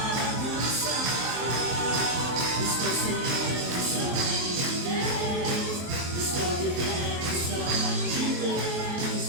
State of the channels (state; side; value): late; left; 23 ms